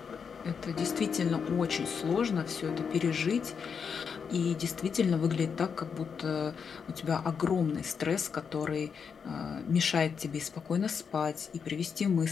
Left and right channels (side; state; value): right; quieter; 6.4 dB